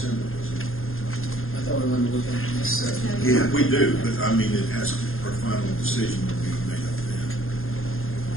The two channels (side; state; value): right; late; 0.60 ms